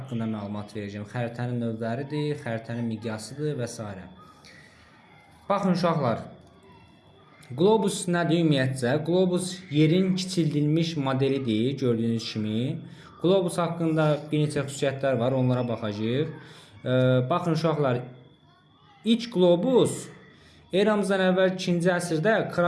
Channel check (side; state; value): both; identical; correlation 1.00